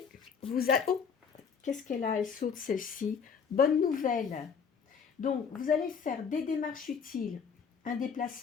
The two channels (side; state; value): right; quieter; 6.4 dB